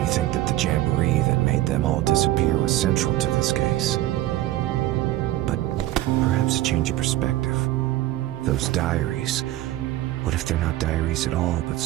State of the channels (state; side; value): quieter; left; 15.1 dB